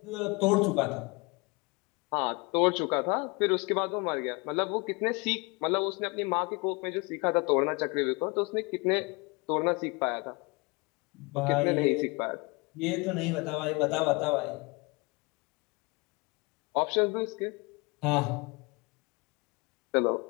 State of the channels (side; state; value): right; quieter; 27.8 dB